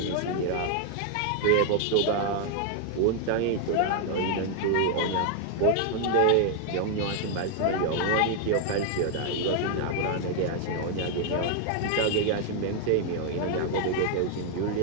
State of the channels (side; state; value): both; different; correlation 0.00